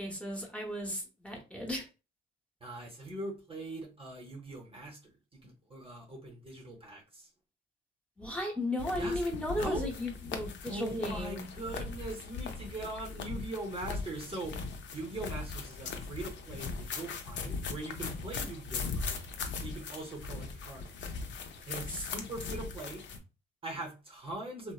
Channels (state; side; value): normal; both; correlation 0.53